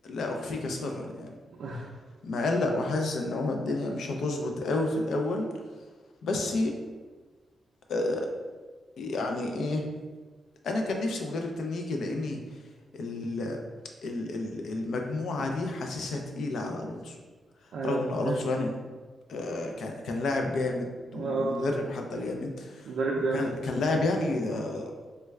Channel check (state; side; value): normal; both; correlation 0.78